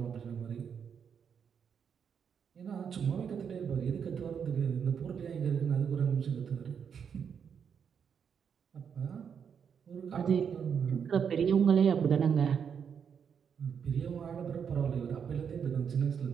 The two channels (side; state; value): left; quieter; 7.2 dB